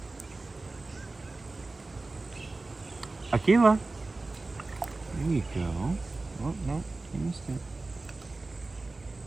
Akila. There you go. Oh, no, you missed it.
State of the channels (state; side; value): quieter; left; 3.3 dB